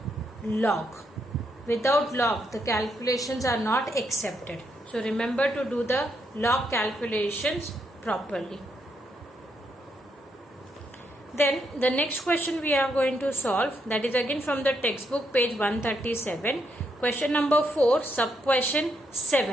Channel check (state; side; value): normal; both; correlation 0.78